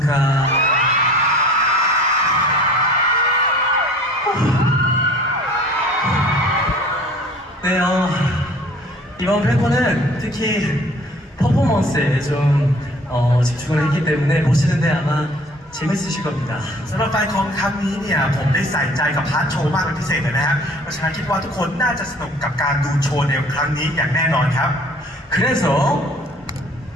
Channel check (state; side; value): normal; both; correlation 0.50